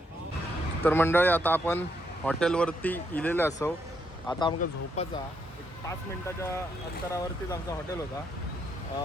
तर मंडळी आता आपण हॉटेलवरती इलेले असो. आता आमका झोपाचा 5 मिनिटाच्या अंतरावरतीच आमचा हॉटेल होता.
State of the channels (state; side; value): normal; both; correlation 0.76